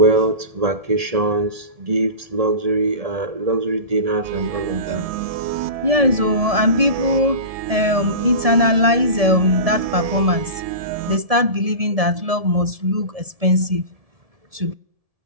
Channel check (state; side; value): late; left; 1.7 ms